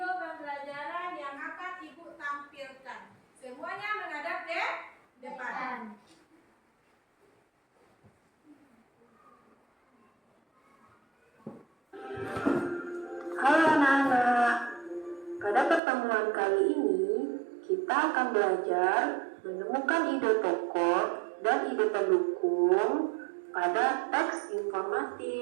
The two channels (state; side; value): drops out; left; at 15.8 s